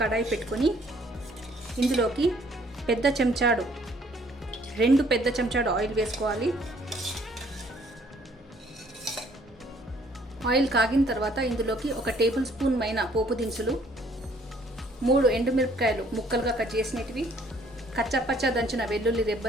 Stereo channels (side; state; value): both; normal; correlation 0.61